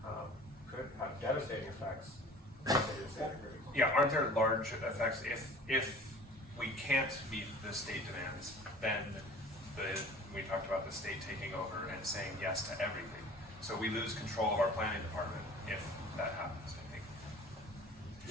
could have devastating effects. Yeah, aren't there large effects if we can't meet the state demands, then we talked about the state taking over and saying yes to everything. So we lose control of our planning department if that happens, I think.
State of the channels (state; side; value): normal; both; correlation 0.45